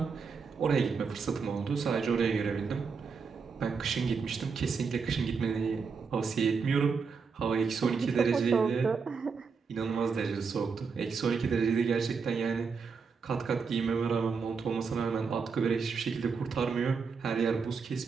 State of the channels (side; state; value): left; quieter; 5.4 dB